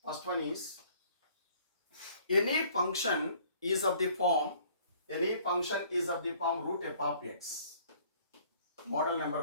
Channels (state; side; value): inverted; both; correlation -0.57